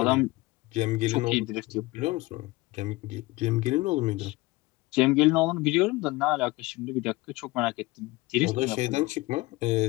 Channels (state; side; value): quieter; right; 21.1 dB